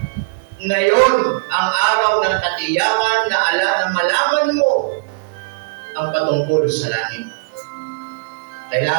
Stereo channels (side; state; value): left; quieter; 32.9 dB